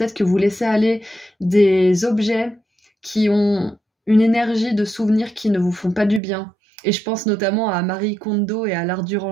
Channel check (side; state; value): left; drops out; at 6.2 s